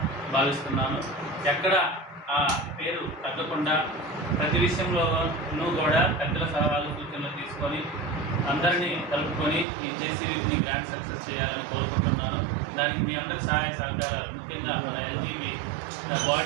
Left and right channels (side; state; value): left; drops out; at 9.7 s